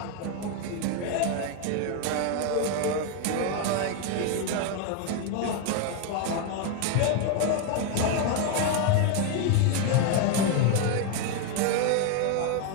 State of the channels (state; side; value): different; both; correlation 0.01